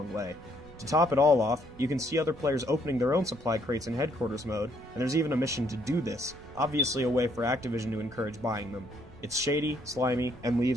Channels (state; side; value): noise; right; rumble, 21 dB below the sound